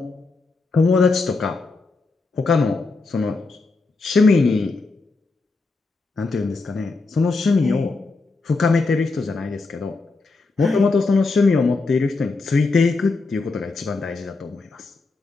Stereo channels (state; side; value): quieter; right; 3.8 dB